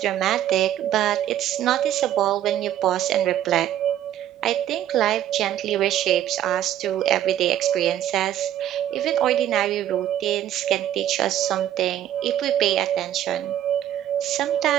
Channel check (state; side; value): quieter; left; 11.7 dB